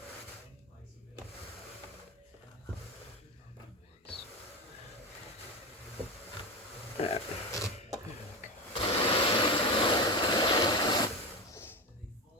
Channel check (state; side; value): normal; both; correlation 0.20